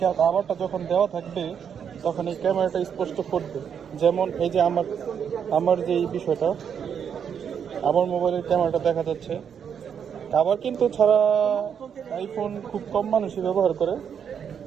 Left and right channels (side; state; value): left; quieter; 7.7 dB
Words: আবারটা যখন দেওয়া থাকবে তখন এই ক্যামেরাটা স্পষ্ট ফুটবে। যেমন এই যে আমার আমার যে এই বিষয়টা, আমার মোবাইলের ক্যামেরাটা দেখা যাচ্ছে। আবার কিন্তু ছাড়া আইফোন খুব কম মানুষই ব্যবহার করে।